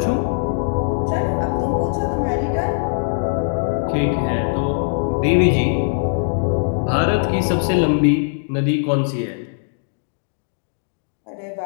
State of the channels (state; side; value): silent; right; digital silence